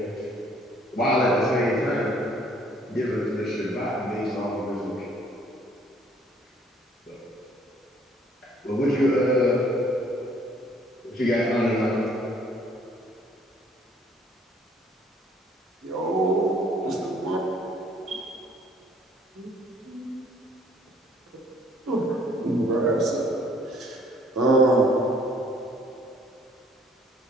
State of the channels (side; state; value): both; normal; correlation 0.60